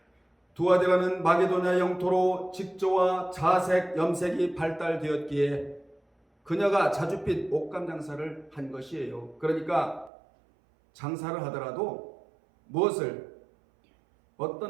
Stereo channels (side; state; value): left; drops out; at 10.1 s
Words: 두아드라는 마게도냐 영토로 직조와 자색, 염색이 발달되었기에 그녀가 자줏빛 옷감 장사를 한 것이에요. 그러니까 장사를 하더라도 무엇을,